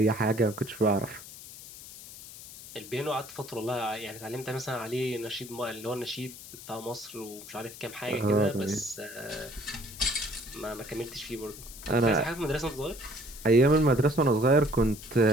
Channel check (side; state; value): left; noise; hiss, 15 dB below the sound